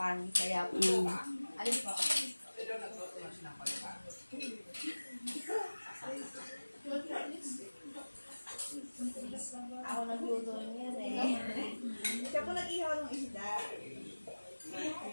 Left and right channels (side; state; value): both; inverted; correlation -1.00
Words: Kaya po. Alin po? Ako nagluto niyan eh. Siya po nag-ihaw ng isda.